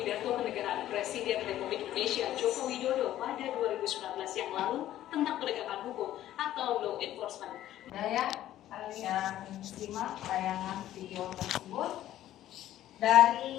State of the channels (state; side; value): quieter; right; 13.1 dB